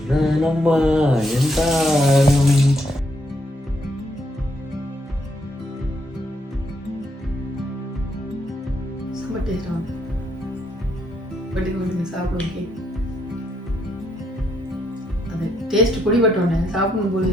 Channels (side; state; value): both; normal; correlation 0.75